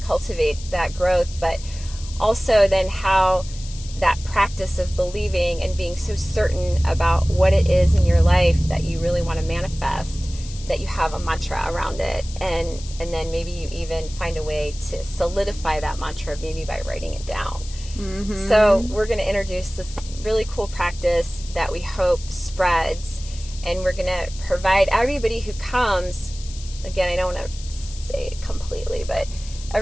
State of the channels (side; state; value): left; noise; hiss, 16 dB below the sound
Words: cultivate that growth, but also then how that practice of believing and being so certain about what it is in your life that you really want to manifest, that you have a mantra around it, and then maybe you even find a way to solidify that mantra, maybe by writing it down. So we're going to introduce this really cool practice that we hope spreads, and we're going to provide everybody who comes, again, I don't want to say it completely, but